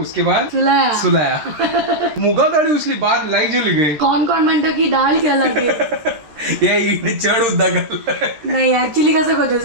बाद सुलाया सुलाया मुगा दाढी उसली बाद लाईक जेली गई कोण कोण म्हणतं की डाळ केला ते ये इकडे चढ उद्दा घाल नाही ऍक्च्युली कसं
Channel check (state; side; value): late; left; 13 ms